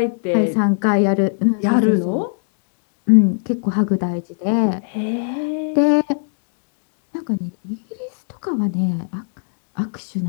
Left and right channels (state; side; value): silent; right; 65 dB below the other